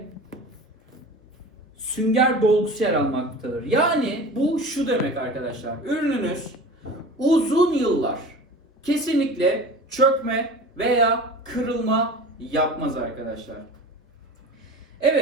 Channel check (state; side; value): normal; both; correlation 0.36